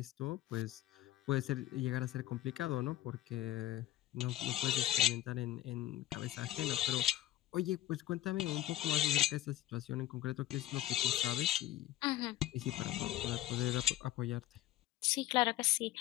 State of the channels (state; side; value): quieter; right; 14.4 dB